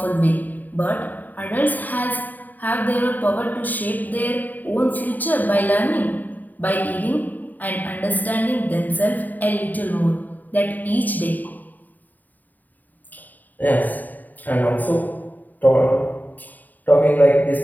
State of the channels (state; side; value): late; right; 0.085 ms